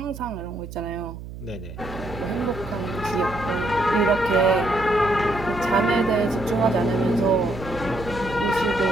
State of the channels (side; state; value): right; noise; hum, 12 dB below the sound